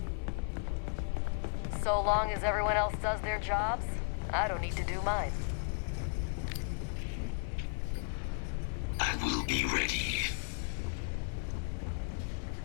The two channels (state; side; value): silent; right; 55 dB below the other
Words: So long as everyone else does their jobs, I don't need to do mine. I will be ready.